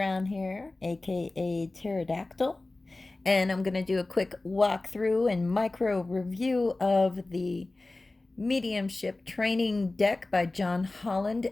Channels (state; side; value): quieter; right; 3.0 dB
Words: here, aka Pterodactyl, and I'm going to do a quick walkthrough and micro review of the Mediumship Training Deck by John Holland